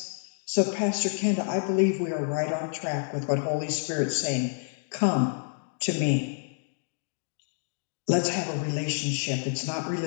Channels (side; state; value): right; silent; digital silence